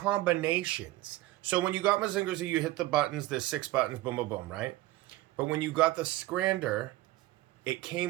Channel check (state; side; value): quieter; left; 17.2 dB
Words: So when you got Mazinger Z, you hit the buttons, there's 6 buttons, boom, boom, boom, right? But when you got the Scrander, it